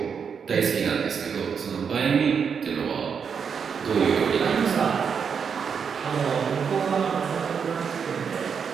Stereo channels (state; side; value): quieter; left; 6.6 dB